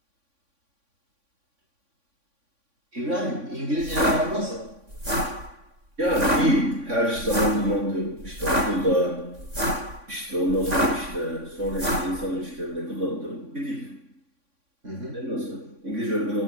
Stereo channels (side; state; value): left; late; 3.6 ms